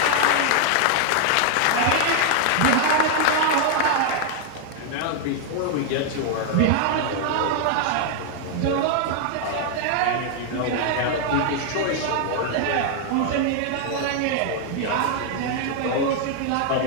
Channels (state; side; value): different; both; correlation 0.00